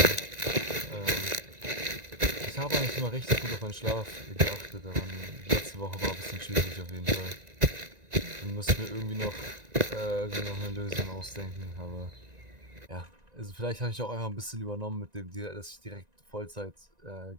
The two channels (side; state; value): left; late; 1.9 ms